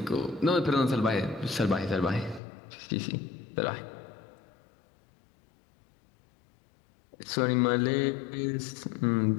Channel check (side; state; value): right; drops out; at 2.4 s